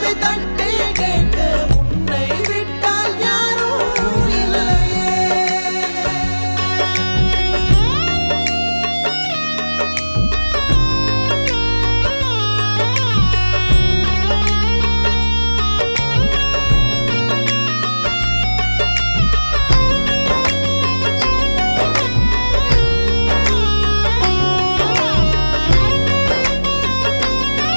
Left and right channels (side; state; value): both; inverted; correlation -1.00